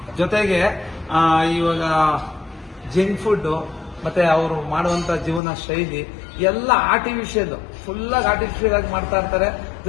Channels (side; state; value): right; drops out; at 5.4 s